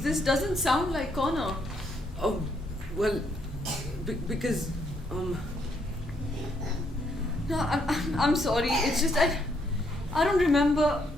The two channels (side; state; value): both; normal; correlation 0.73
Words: doesn't sound like Connor. Well, because, No, I'm sorry. It's just I don't remember